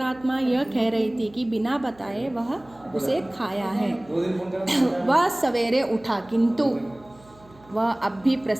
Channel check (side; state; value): right; noise; hum, 26 dB below the sound